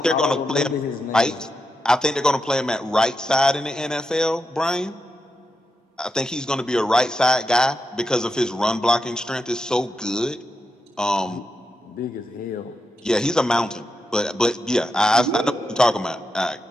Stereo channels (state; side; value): normal; both; correlation 0.86